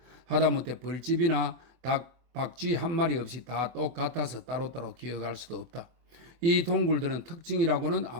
하다못해 벌집이나 닭, 박쥐 한 마리 없이 다 똑같아서 따로따로 기억할 수도 없다. 이 동굴들은 특징이라고는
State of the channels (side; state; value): left; late; 24 ms